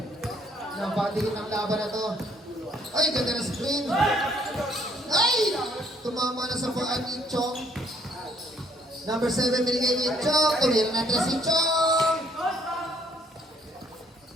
Napatigin ang laban na to. Ay, ganda na screen. Ay! Tumama na sa paan ni Chong. Number 7, binigay ni Chong. Tumira na si Chong.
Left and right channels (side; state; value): both; normal; correlation 0.65